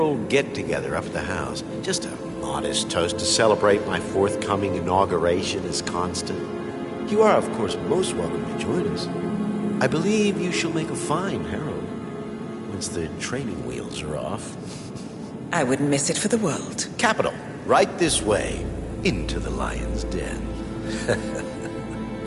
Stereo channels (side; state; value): both; identical; correlation 1.00